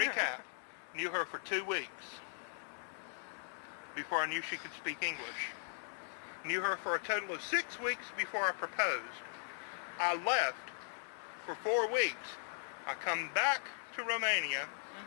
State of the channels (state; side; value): silent; right; digital silence